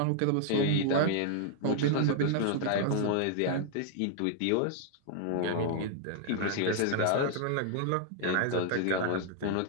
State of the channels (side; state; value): both; different; correlation -0.01